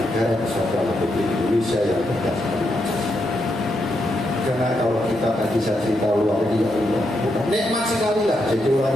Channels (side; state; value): both; normal; correlation 0.81